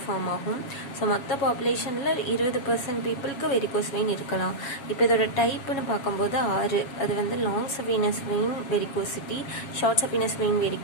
ஃபார்ம் ஆகும். ஸோ மொத்த பாப்புலேஷனில் 20% பீப்புளுக்கு வெரிகோஸ் வெயின் இருக்கலாம். இப்போ இதோட டைப்புன்னு பார்க்கும்போது 6. அது வந்து long saphenous vein varicosity, short saphenous vein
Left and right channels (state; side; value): late; right; 7.3 ms